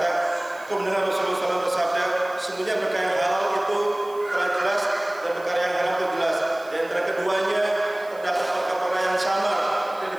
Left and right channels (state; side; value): noise; right; hiss, 25 dB below the sound